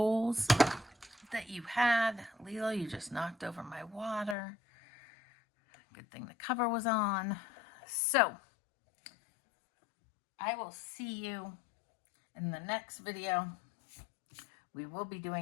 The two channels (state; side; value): drops out; right; at 4.4 s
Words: that you had. Lilo, you just knocked over my water. Good thing the cover was on. So I will see you in the next video. We will be